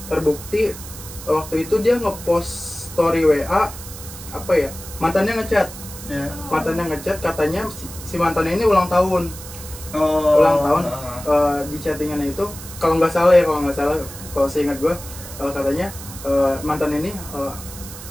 waktu itu dia ngepost story WA mantannya ngechat. Mantannya ngechat katanya si mantannya ini ulang tahun. Di chattingannya itu kalau nggak salah kalau seingat gue katanya mantan ini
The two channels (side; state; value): right; noise; hiss, 13 dB below the sound